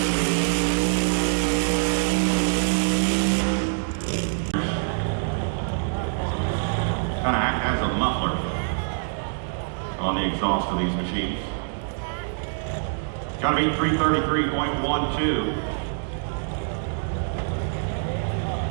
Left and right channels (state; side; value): silent; left; digital silence